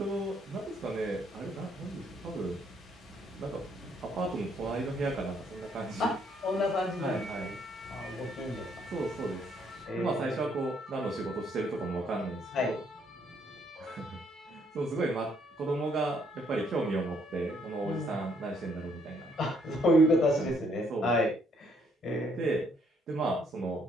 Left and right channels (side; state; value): both; normal; correlation 0.69